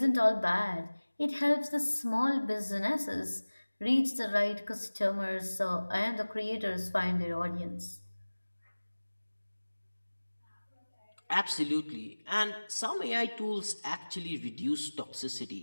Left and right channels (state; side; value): inverted; both; correlation -1.00